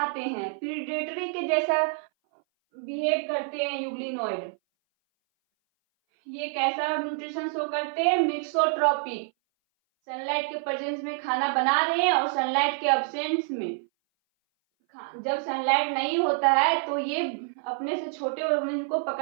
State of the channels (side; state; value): left; silent; 58 dB below the other